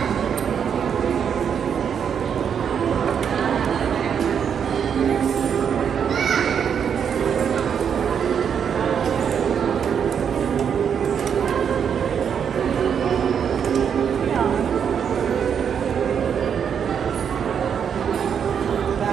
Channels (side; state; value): left; quieter; 7.6 dB